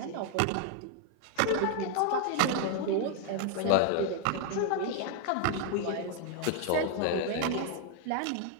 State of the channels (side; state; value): both; different; correlation 0.00